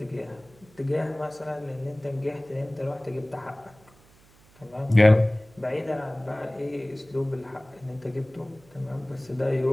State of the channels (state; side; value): noise; right; hum, 27 dB below the sound